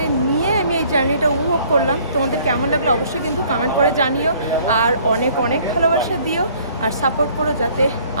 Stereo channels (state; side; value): inverted; both; correlation -0.58